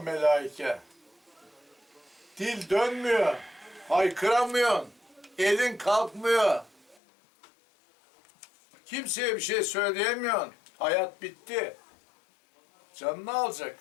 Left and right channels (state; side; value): drops out; right; at 7.0 s